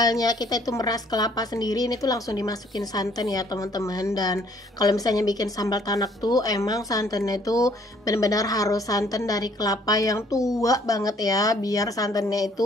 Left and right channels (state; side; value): normal; both; correlation 0.62